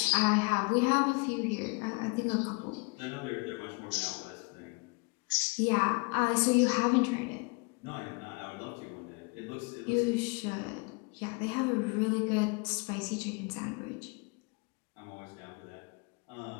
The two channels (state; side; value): quieter; right; 30.0 dB